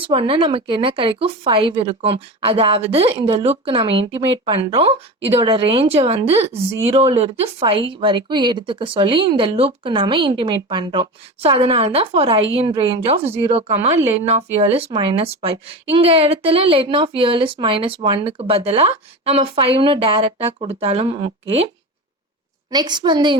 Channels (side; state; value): both; normal; correlation 0.26